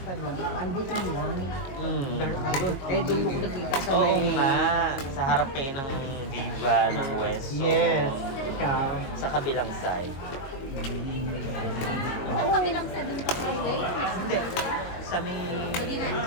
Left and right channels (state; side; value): late; right; 22 ms